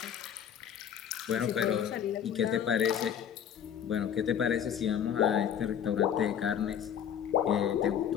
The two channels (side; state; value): right; quieter; 8.9 dB